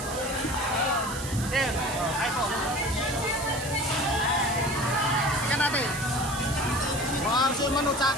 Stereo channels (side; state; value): right; noise; hiss, 10 dB below the sound